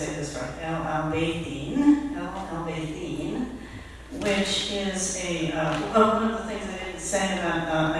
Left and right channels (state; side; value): identical; both; correlation 1.00